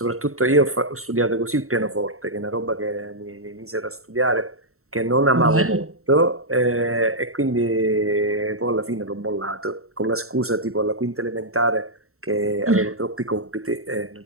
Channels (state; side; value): late; left; 0.63 ms